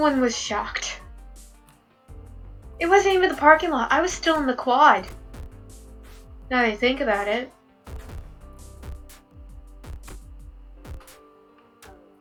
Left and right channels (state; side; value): identical; both; correlation 1.00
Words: was shocked. It wasn't even the parking lot. I was still in the quad. Now that I think about it.